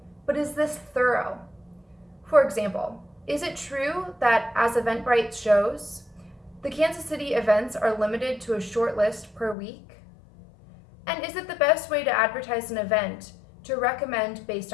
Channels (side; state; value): right; drops out; at 9.6 s